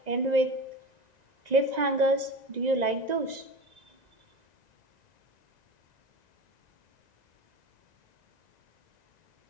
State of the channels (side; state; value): left; late; 1.9 ms